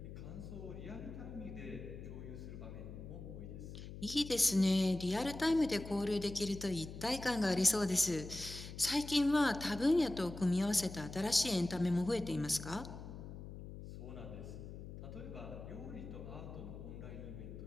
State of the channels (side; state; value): left; noise; hum, 11 dB below the sound